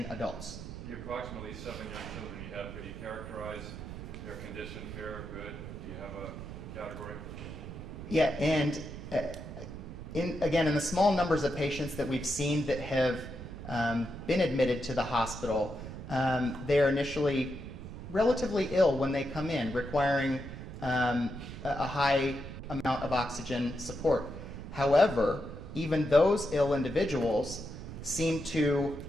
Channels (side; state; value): right; noise; rumble, 10 dB below the sound